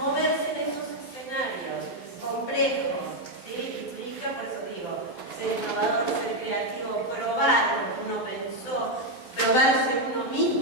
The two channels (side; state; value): right; late; 12 ms